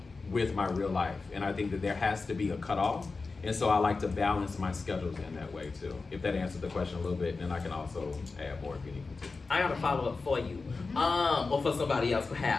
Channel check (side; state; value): right; quieter; 4.1 dB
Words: with my real life. And I think that there has to be a cutoff. And so I like to balance my schedules in that way too. If that answers the question a little bit, then I can also add more if you need me to. I got a follow up for you, or for somebody else